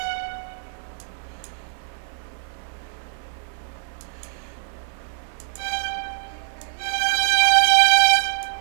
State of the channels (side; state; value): left; silent; 63 dB below the other